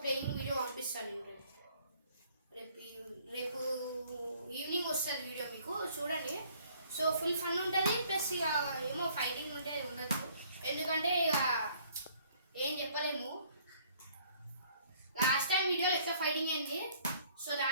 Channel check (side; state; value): both; inverted; correlation -0.60